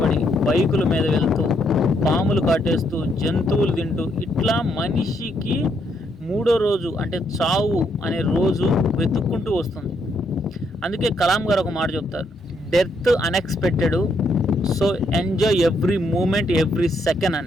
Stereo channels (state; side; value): normal; both; correlation 0.74